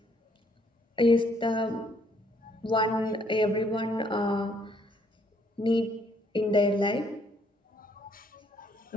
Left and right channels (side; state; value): both; normal; correlation 0.68